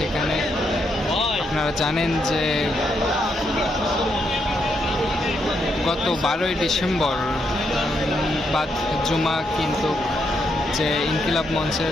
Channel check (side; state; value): both; normal; correlation 0.79